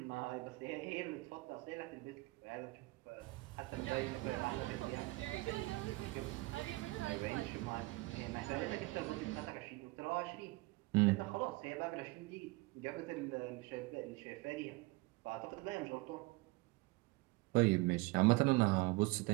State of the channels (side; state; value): left; quieter; 22.7 dB